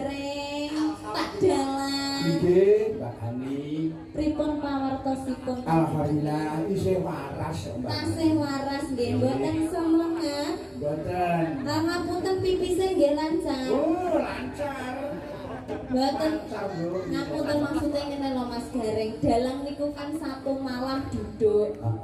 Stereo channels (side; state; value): both; identical; correlation 1.00